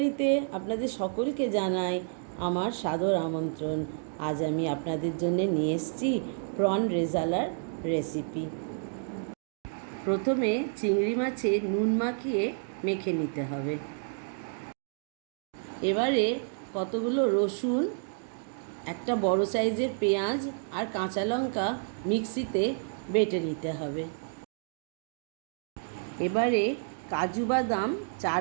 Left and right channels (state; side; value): silent; left; digital silence